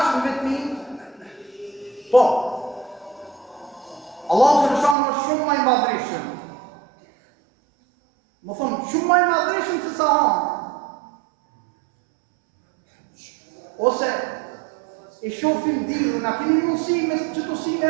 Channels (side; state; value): left; drops out; at 5.0 s